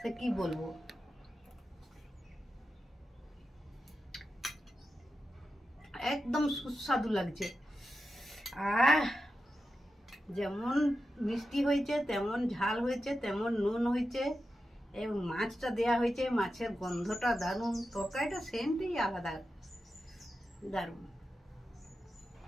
কি বলবো। একদম সুস্বাদু লাগছে। যেমন মিষ্টি হয়েছে, তেমন ঝাল হয়েছে, তেমন নুন হয়েছে, এবং মাছটা দেয়া হয়েছে, মাছের গন্ধটা দারুণ, তরকারিটা সেন্টই আলাদা, দারুণ।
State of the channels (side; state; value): both; normal; correlation 0.90